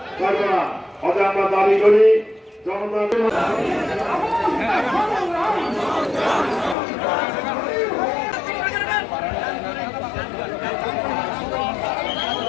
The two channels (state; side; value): drops out; right; at 6.8 s